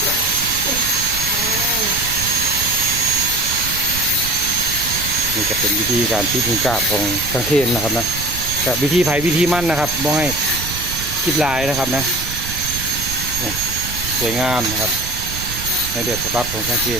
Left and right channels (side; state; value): right; noise; rumble, 9 dB below the sound